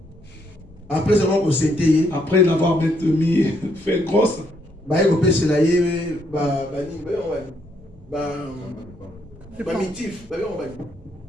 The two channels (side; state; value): left; noise; hum, 29 dB below the sound